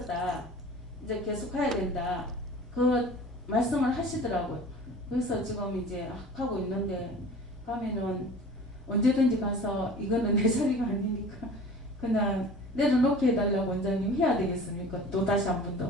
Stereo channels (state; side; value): normal; both; correlation 0.42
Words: 이제 계속 가야 된다. 그 말씀을 하시더라고요. 그래서 지금 이제 하고 있는데 가면은 언제든지 가서 이거는 내 자리가 아니니까 그냥 내려놓게 해달라고 원장님 해야 되겠습니까? 또 다시 한 번